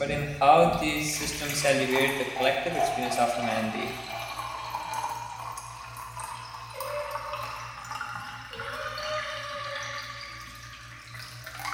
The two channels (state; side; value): identical; both; correlation 1.00